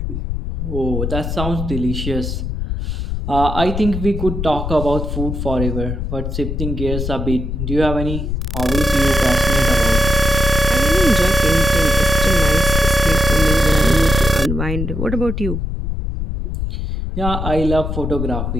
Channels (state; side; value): noise; left; rumble, 3 dB below the sound